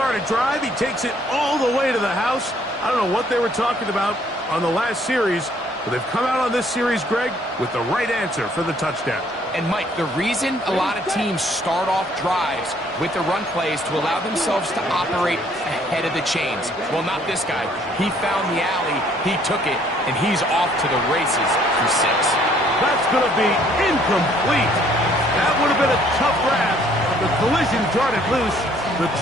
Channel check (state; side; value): normal; both; correlation 0.63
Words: a drive. He takes it all the way to the house. I don't know what they were talking about on the last series, but they've come out on this series, Greg, with the right answer for the touchdown. And, Mike, the reason a lot of teams start off drives with the run plays to allow themselves to operate ahead of the chains. Well, not this guy. He found the alley, he took it, and he's off to the races for 6. That's going to be incomplete. That would have been a tough grab. The collision darted loose. The